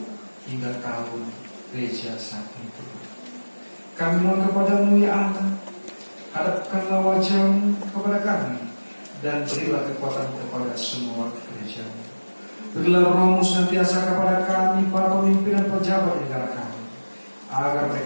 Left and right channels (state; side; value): inverted; both; correlation -1.00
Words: hingga tahun gereja saat itu. Kami mohon kepada-Mu ya Allah, hadapkanlah wajah-Mu kepada kami, dan berilah kekuatan kepada semua gereja-Mu. Berilah Roh-Mu senantiasa kepada kami, para pemimpin dan pejabat negara kami, agar